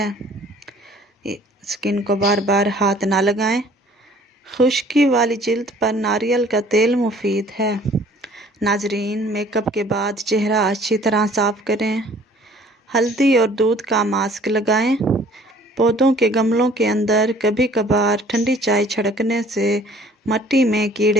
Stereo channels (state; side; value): normal; both; correlation 0.54